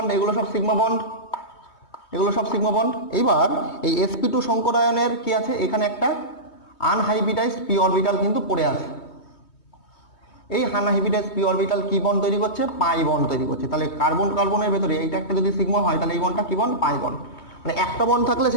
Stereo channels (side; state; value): right; late; 3.2 ms